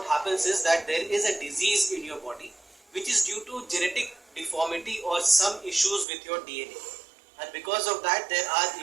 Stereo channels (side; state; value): left; drops out; at 6.1 s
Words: happens is that there is a disease in your body which is due to genetic deformity or some issues with your DNA. And because of that, there are